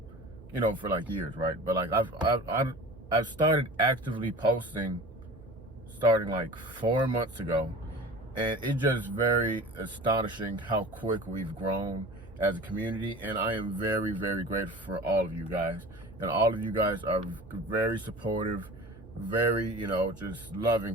for like years, right? But like I've started actively posting starting like 4 months ago. And it's just very astonishing how quick we've grown as a community. And I am very, very grateful for all of you guys. And all of you guys are very supportive, very, just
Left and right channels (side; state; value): right; noise; hum, 21 dB below the sound